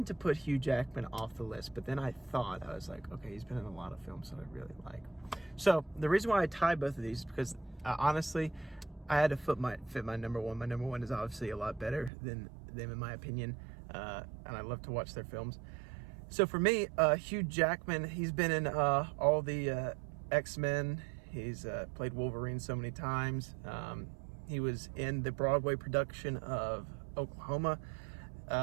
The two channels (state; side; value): drops out; left; at 12.1 s